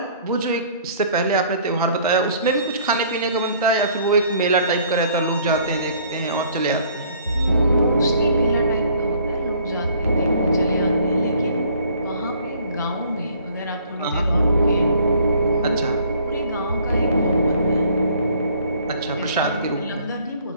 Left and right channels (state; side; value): inverted; both; correlation -0.57